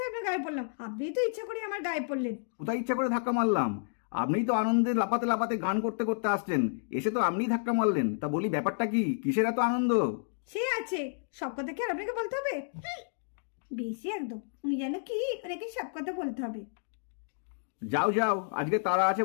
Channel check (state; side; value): silent; right; digital silence